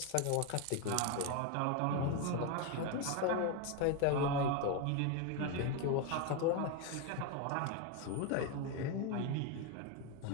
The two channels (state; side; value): different; both; correlation 0.02